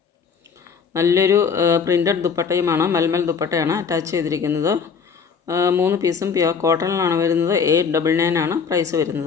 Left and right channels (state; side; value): quieter; right; 6.1 dB